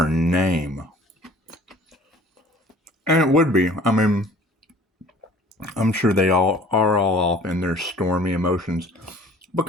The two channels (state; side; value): normal; both; correlation 0.50